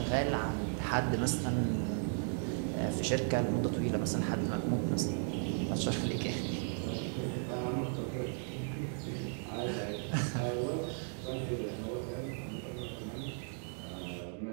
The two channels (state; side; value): silent; left; 54 dB below the other